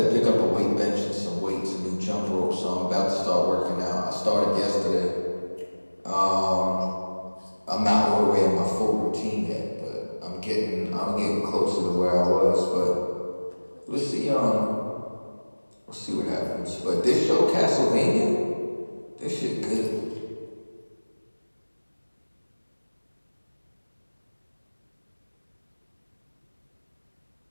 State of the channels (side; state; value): both; inverted; correlation -1.00